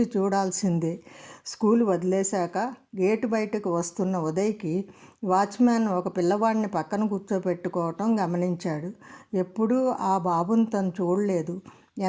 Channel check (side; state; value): both; identical; correlation 1.00